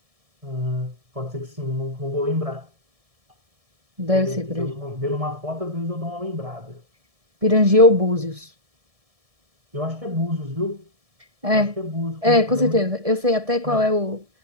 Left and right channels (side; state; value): left; late; 1.7 ms